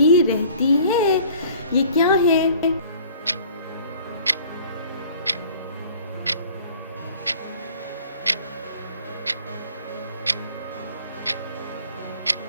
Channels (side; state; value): both; inverted; correlation -0.50